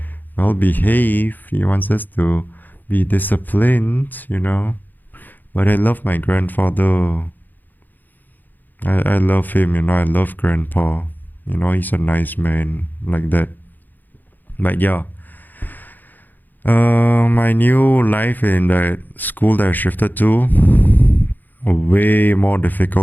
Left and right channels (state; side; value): late; right; 0.087 ms